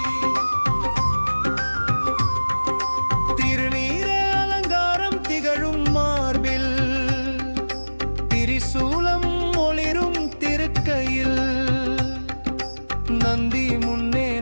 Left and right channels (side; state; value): both; inverted; correlation -1.00